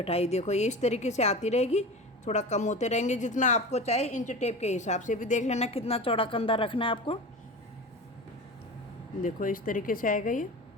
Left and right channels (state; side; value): normal; both; correlation 0.31